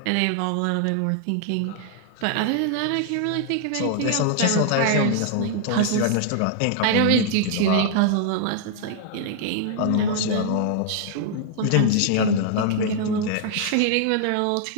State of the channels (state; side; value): different; both; correlation -0.01